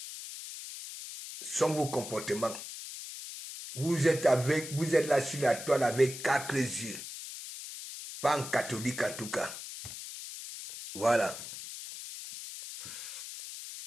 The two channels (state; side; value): noise; left; hiss, 10 dB below the sound